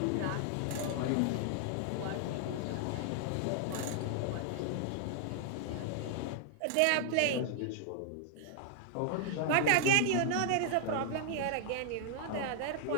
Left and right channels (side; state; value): both; different; correlation 0.00